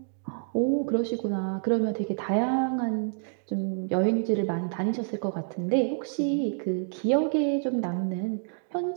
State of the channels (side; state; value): left; silent; digital silence